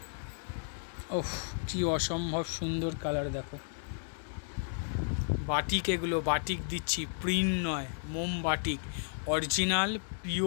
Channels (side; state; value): right; silent; 55 dB below the other